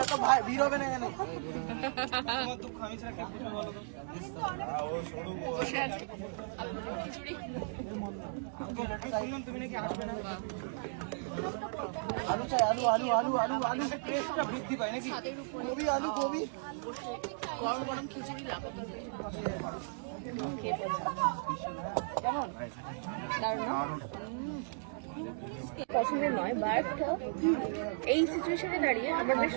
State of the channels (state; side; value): silent; left; digital silence